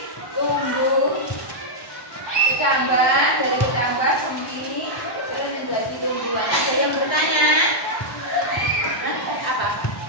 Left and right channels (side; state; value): right; late; 1.1 ms